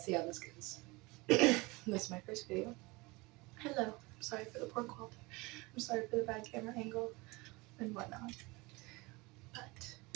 see how this goes. This is my first video. Hello, I'm sorry for the poor quality. I'm sorry for the bad camera angle and whatnot.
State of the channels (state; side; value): quieter; left; 24.3 dB